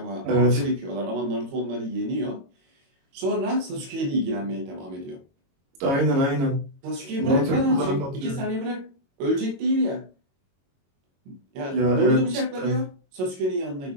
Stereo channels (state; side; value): late; left; 22 ms